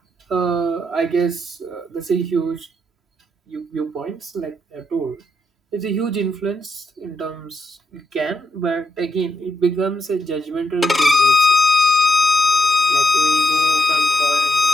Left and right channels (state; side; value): normal; both; correlation 0.78